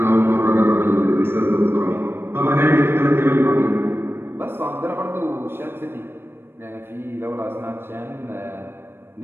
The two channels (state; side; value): late; left; 0.11 ms